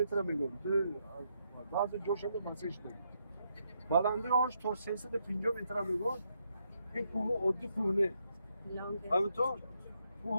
میگم بعضی جاشو مسیج داریم بلندی آنش تا 350 متر میگم این کوه عادی کوه نه همینطور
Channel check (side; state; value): both; inverted; correlation -0.78